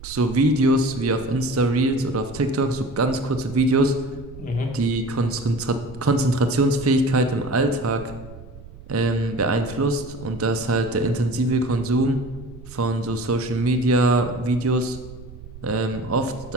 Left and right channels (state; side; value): noise; right; rumble, 16 dB below the sound